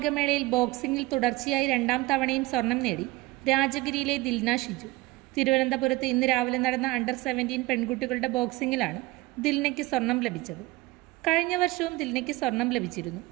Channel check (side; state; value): left; quieter; 20.7 dB